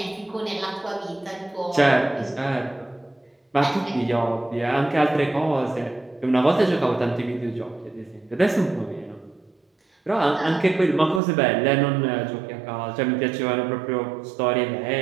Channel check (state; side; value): drops out; left; at 11.2 s